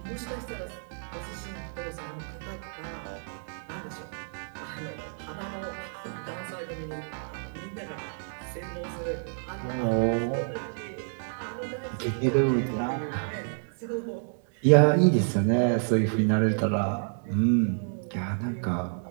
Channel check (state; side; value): silent; left; digital silence